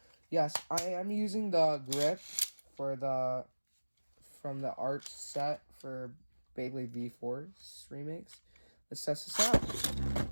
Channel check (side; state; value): both; inverted; correlation -1.00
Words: Yes, I am using the grip from the art set for Beyblade V4's remakes. Let's test this out.